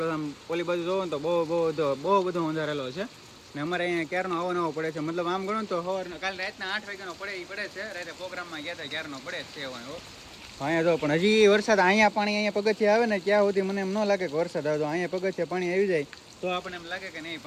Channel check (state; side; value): identical; both; correlation 1.00